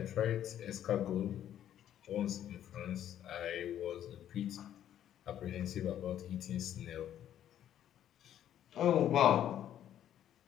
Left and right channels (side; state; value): right; quieter; 10.9 dB